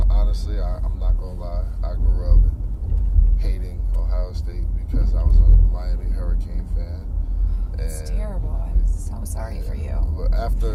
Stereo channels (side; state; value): both; identical; correlation 1.00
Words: honestly, I'm not gonna lie, I grew up hating Ohio State because I was a Miami Hurricane fan. It's terrible. I'm so sorry for you.